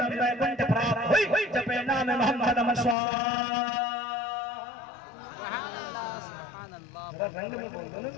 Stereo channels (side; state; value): right; drops out; at 3.0 s